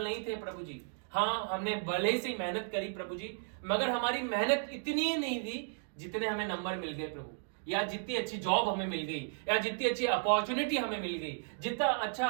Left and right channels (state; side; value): silent; left; digital silence